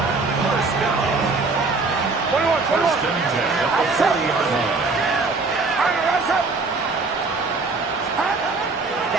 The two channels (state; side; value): quieter; left; 3.8 dB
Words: 21. First and 10 at the 40-yard line.